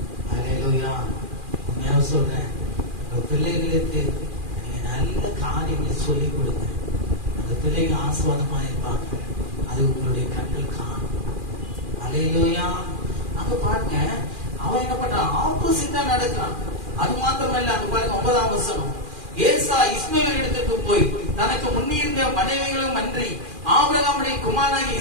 அல்லேலூயா. உண்மையா சொல்றேன், உங்க பிள்ளைகளுக்கு நீங்க நல்ல காரியங்களை சொல்லிக் கொடுங்க, அந்த பிள்ளைங்க ஆசீர்வாதமா இருப்பாங்க, அது உங்களுடைய கண்கள் காணும். அல்லேலூயா. அங்க பாருங்க, அவன் என்ன பண்றான், ஆப்போசிட்டா நடக்கிறான். அது மாத்திரமல்ல, அங்க பாருங்க 9ஆம் வசனம், ஏசா இஸ்மவேல் இடத்துக்கு போய் தனக்கு முன்னிருந்த மனைவிகளும் அன்றி ஆபிரகாமுடைய குமாரனாகிய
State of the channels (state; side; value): late; left; 2.4 ms